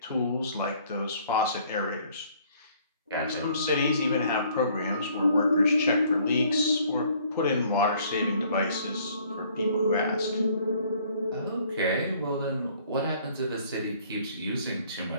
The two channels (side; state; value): both; inverted; correlation -0.60